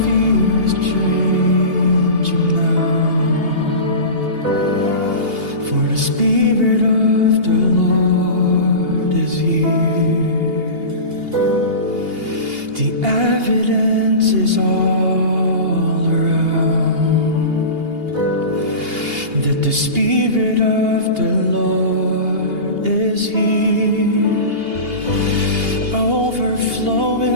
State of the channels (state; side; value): late; left; 2.8 ms